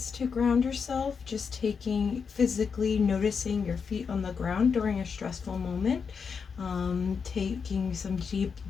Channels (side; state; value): right; quieter; 5.9 dB